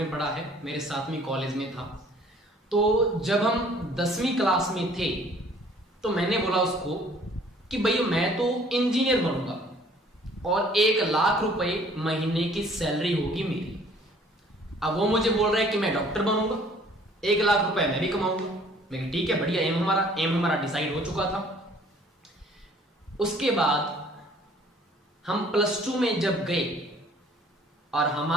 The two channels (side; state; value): both; normal; correlation 0.56